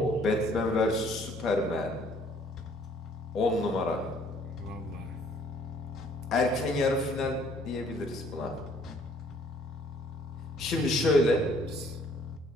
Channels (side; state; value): both; normal; correlation 0.60